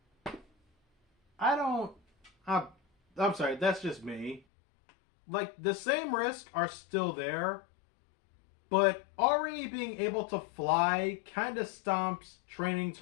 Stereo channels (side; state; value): right; drops out; at 4.4 s